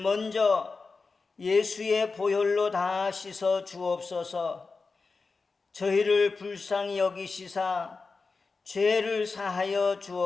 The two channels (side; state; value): right; quieter; 4.3 dB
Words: 예수의 보혈로 다 씻어 주옵소서. 저희를 불쌍히 여기시사 죄를 사하여